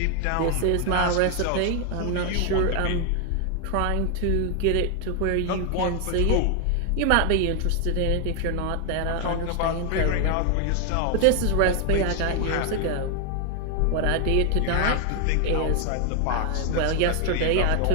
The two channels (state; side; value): different; both; correlation 0.01